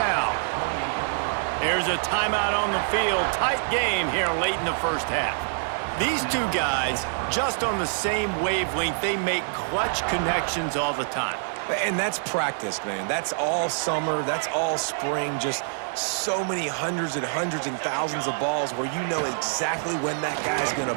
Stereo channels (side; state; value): left; silent; digital silence